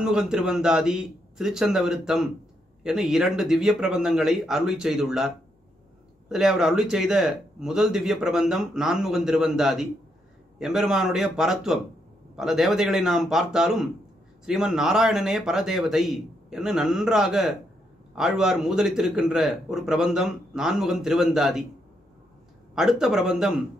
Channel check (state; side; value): normal; both; correlation 0.78